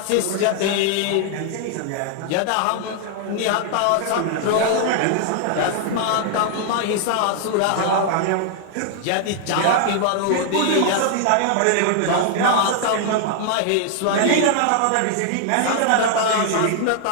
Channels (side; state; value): both; different; correlation 0.00